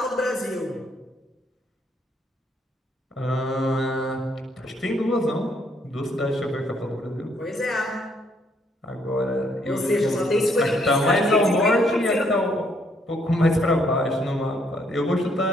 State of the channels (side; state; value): both; normal; correlation 0.70